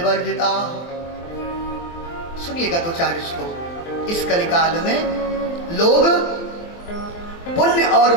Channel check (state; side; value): late; right; 24 ms